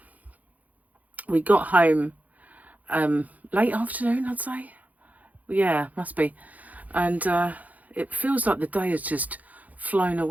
we got home late afternoon, I'd say. Yeah, must be. And it feels like the day has just flown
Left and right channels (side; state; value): left; late; 0.077 ms